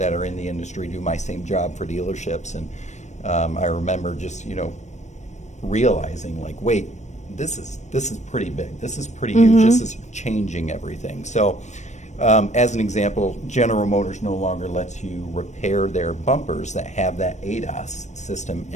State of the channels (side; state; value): right; late; 0.34 ms